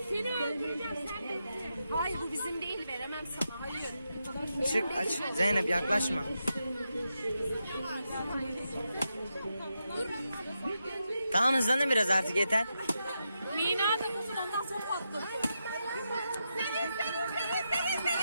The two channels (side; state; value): both; inverted; correlation -0.86